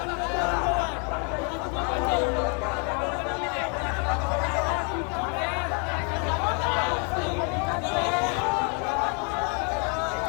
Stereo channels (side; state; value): right; quieter; 37.5 dB